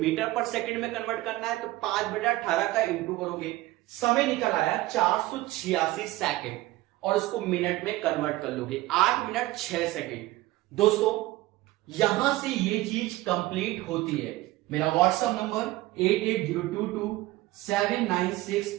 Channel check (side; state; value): left; quieter; 17.8 dB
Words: पर सेकंड में कन्वर्ट करना है, तो 5/18 का इंटू करोगे, समय निकल आया 486 सेकंड, और उसको मिनट में कन्वर्ट कर लोगे, 8 मिनट 6 सेकंड। दोस्तों यहां से ये चीज कंप्लीट होती है। मेरा व्हाट्सएप नंबर